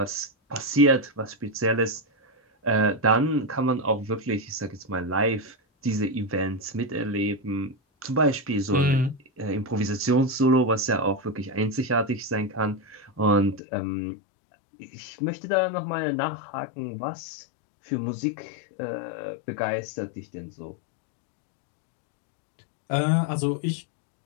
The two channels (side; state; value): right; drops out; at 13.6 s